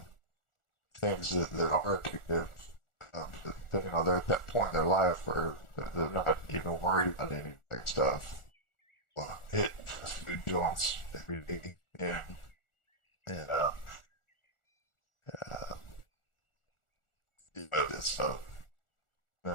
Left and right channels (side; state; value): right; late; 1.4 ms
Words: things that are addictive. They're at that point in their life where they're not even worried about any of that stuff. Well, hit fast food joints every day, and uh, it's an